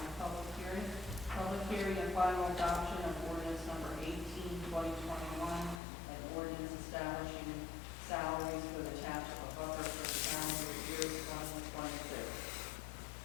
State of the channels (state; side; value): drops out; right; at 5.8 s